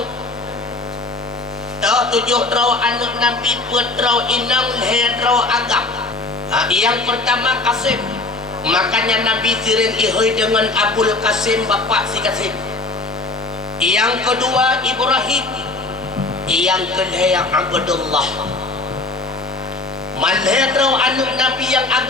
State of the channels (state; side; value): quieter; right; 3.3 dB